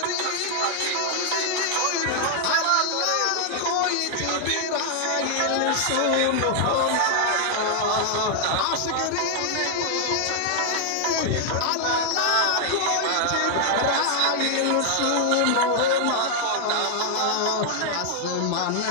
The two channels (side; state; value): both; different; correlation 0.00